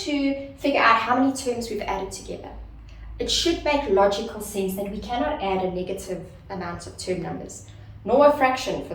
figure out how many terms we've added together. It should make logical sense that we cannot add a negative amount of term numbers, nor a fraction for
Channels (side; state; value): both; identical; correlation 1.00